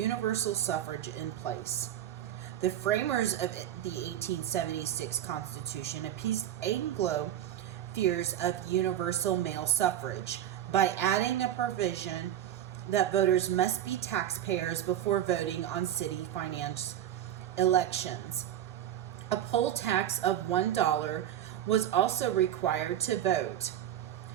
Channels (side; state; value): left; quieter; 11.2 dB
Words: suffrage in place. The framers of the 1876 Constitution appeased Anglo fears of universal male suffrage by adding a provision that voters must be taxpayers before voting on city finance elections. A poll tax of $1 was also required to vote.